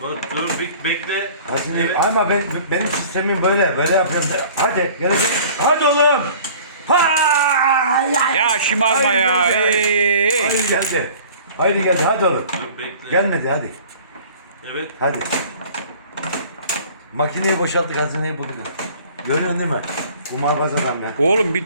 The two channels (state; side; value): inverted; both; correlation -0.47